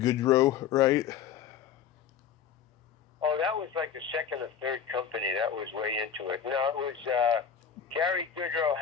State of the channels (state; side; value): quieter; right; 7.9 dB